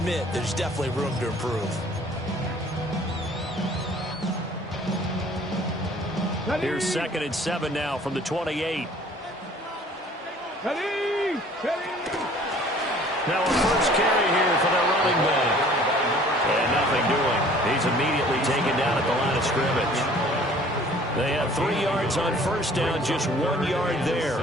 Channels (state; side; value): normal; both; correlation 0.52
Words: there's definitely room to improve. Here's 2nd and 7 now from the 28. Now a first carry here for their running back. And nothing doing. He's immediately taken down at the line of scrimmage. They have 3 yards on first down, just 1 yard there.